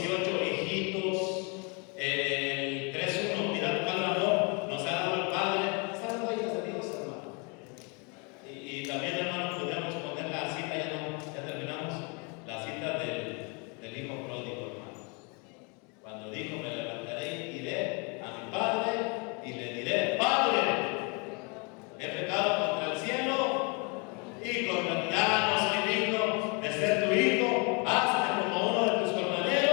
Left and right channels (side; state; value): right; quieter; 33.0 dB